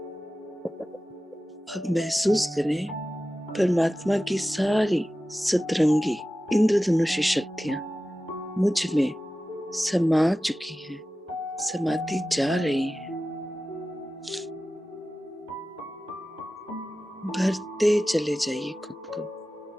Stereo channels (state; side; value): normal; both; correlation 0.94